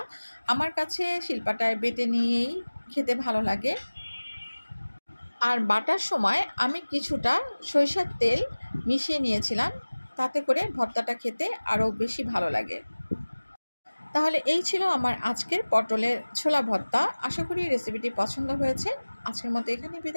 আমার কাছে শিলপাটায় বেটে নিয়েই খেতে ভালো লাগে। আর বাটার সময় আমি কিছুটা সরিষার তেল মিশিয়ে নিয়েছিলাম, তাতে করে ভর্তাটা খেতে আরও বেশি ভালো লাগে। তাহলে এই ছিল আমার আজকের পটলের ছোলা ভর্তা। আশা করি রেসিপিটি পছন্দ হয়েছে। আজকের মতো এখানেই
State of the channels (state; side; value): inverted; both; correlation -1.00